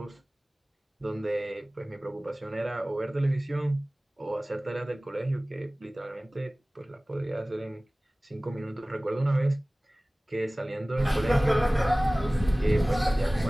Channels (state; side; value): normal; both; correlation 0.98